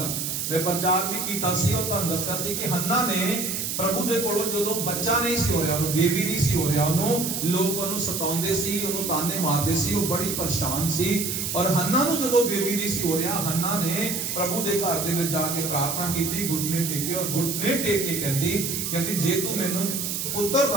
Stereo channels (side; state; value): right; noise; hiss, 2 dB below the sound